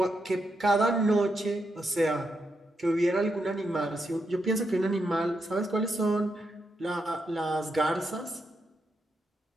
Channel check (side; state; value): both; normal; correlation 0.83